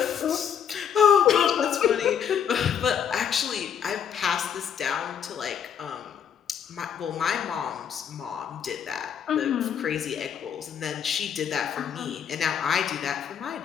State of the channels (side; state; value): right; quieter; 8.2 dB